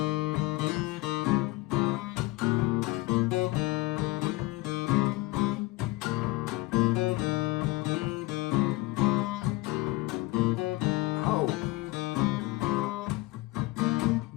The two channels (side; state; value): right; quieter; 20.5 dB